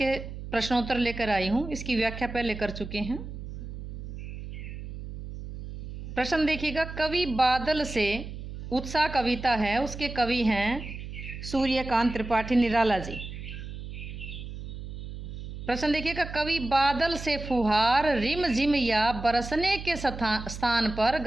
प्रश्नोत्तर लेकर आई हूँ। इसकी व्याख्या पहले कर चुके हैं। प्रश्न देखिएगा, कवि बादल से उत्साह कविता है, उसके कवि हैं सूर्यकांत त्रिपाठी निराला जी। प्रश्न देखिएगा, कवि बादल से फुहार रिम झिम या बरसने के स्थान पर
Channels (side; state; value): right; noise; hum, 10 dB below the sound